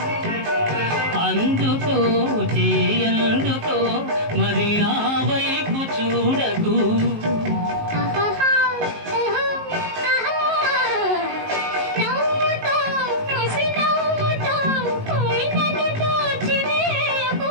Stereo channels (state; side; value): late; left; 19 ms